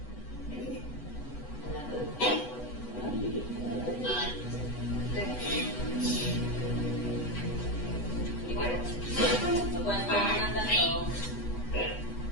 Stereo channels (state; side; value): late; right; 8.1 ms